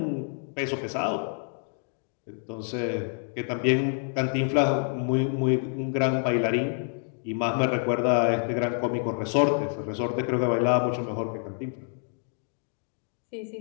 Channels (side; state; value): right; silent; 60 dB below the other